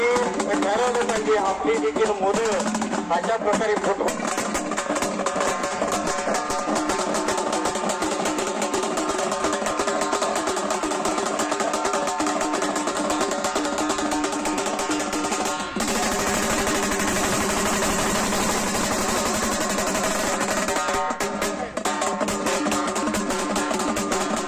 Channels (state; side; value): identical; both; correlation 1.00